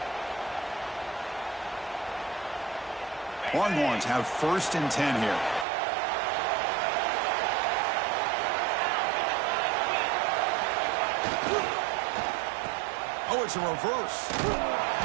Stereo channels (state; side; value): drops out; left; at 5.7 s